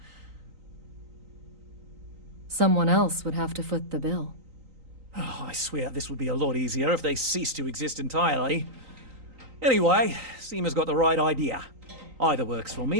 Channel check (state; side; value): late; left; 3.9 ms